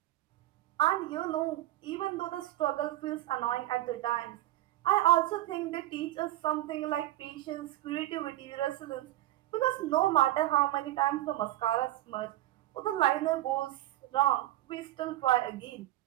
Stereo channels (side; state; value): left; quieter; 14.9 dB